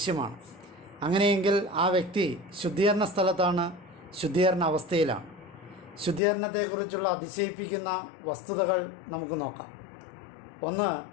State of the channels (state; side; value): drops out; right; at 6.2 s